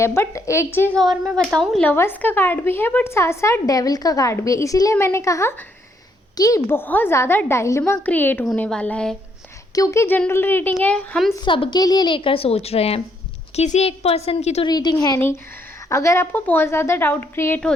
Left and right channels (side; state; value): both; normal; correlation 0.72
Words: बट एक चीज़ और मैं बताऊं, लवर्स का कार्ड भी है बट साथ साथ डेविल का कार्ड भी है। इसीलिए मैंने कहा कि बहुत ज़्यादा डायलेमा क्रिएट होने वाला है, क्योंकि जनरल रीडिंग है, हम सबके लिए लेकर सोच रहे हैं, किसी एक पर्सन की तो रीडिंग है नहीं। अगर आपको बहुत ज़्यादा डाउट क्रिएट